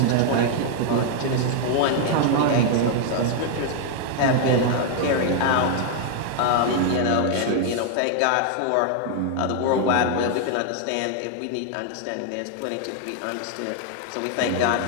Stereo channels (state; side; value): different; both; correlation 0.00